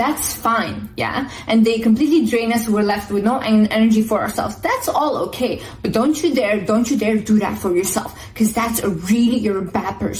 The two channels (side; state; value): both; identical; correlation 1.00